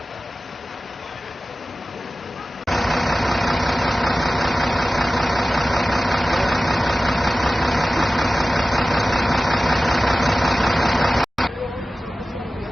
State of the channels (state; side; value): normal; both; correlation 0.96